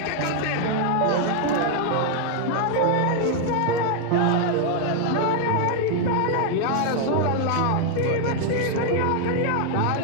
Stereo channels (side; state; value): both; different; correlation 0.00